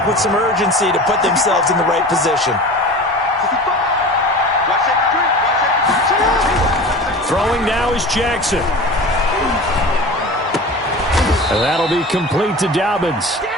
with some urgency to put themselves in the right position. Throwing now is Jackson. And that'll be complete to Dobbins.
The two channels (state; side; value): normal; both; correlation 0.35